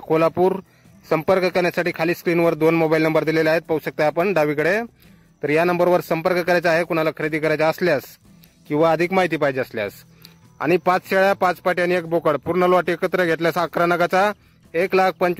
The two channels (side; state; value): both; identical; correlation 1.00